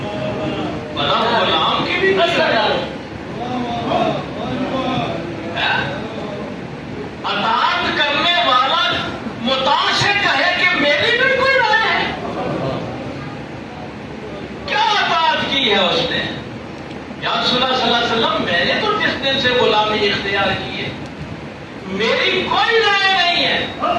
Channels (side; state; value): both; identical; correlation 1.00